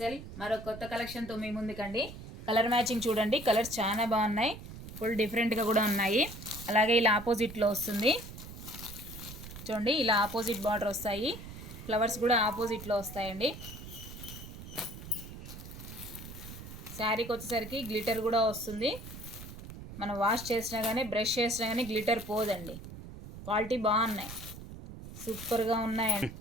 మరో కొత్త కలెక్షన్తో మీ ముందుకండి. కలర్ మ్యాచింగ్ చూడండి, కలర్స్ చాలా బాగున్నాయి, ఫుల్ డిఫరెంట్గా కూడా ఉన్నాయి. అలాగే ఇలా ఆపోజిట్లో వస్తుంది చూడండి, ఇలా ఆపోజిట్ బార్డర్ వస్తాయి, ఫ్లవర్స్ కూడా ఆపోజిట్లో వస్తాయండి. శారీకి వచ్చేసరికి గ్లిటర్ కూడా వస్తుంది. మనం వాష్ చేసినా కానీ బ్రష్ చేసినా కానీ గ్లిటర్ పోదండి. క్వాలిటీ బాగున్నాయి, సూపర్గా ఉన్నాయండి.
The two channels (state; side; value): noise; right; rumble, 12 dB below the sound